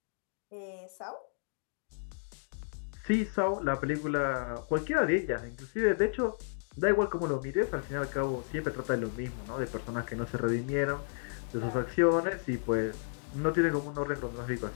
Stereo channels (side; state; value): right; silent; digital silence